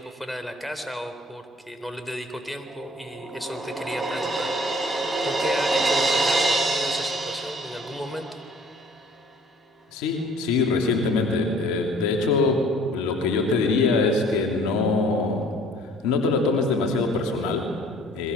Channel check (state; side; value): normal; both; correlation 0.53